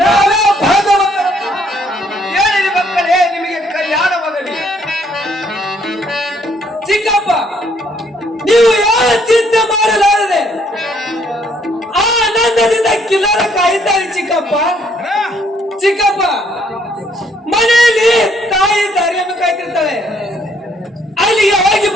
ನಾವೇ ಭಾಗ್ಯವಂತರಪ್ಪ ಹೇಳಿರಿ ಮಕ್ಕಳೇ ನಿಮಗೆ ಕಲ್ಯಾಣವಾಗಲಿ ಚಿಕ್ಕಪ್ಪ ನೀವು ಯಾವ ಚಿಂತೆ ಮಾಡಲಾರದೆ ಆನಂದದಿಂದ ಕಿಲ್ಲರ ಕಾಯ್ತಾರೆ ಚಿಕ್ಕಪ್ಪ ಚಿಕ್ಕಪ್ಪ ಮನೆಯಲ್ಲಿ ತಾಯಿ ದಾರಿಯನ್ನು ಕಾಯ್ತಿರ್ತಾಳೆ ಅಲ್ಲಿಗೆ ಹೋಗಿ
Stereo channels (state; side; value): normal; both; correlation 0.67